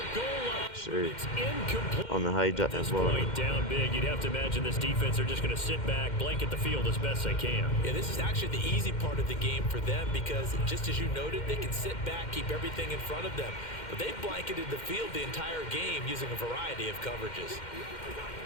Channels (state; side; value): late; right; 2.1 ms